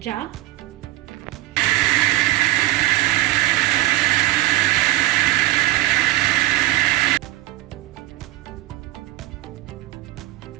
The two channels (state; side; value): quieter; left; 17.8 dB